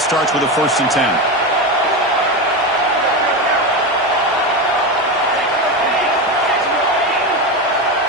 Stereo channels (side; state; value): both; normal; correlation 0.17